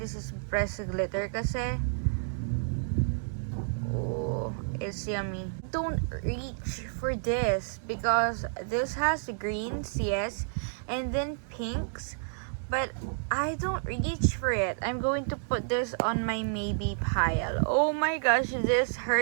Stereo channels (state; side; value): silent; left; digital silence